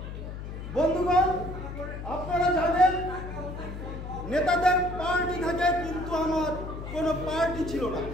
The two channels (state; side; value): noise; left; hum, 8 dB below the sound